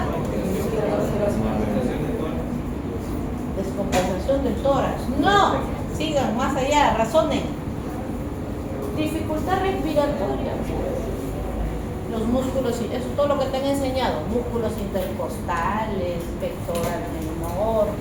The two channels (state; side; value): identical; both; correlation 1.00